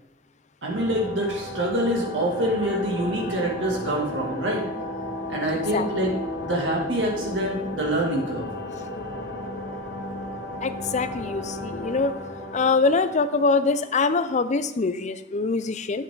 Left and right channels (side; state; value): both; normal; correlation 0.17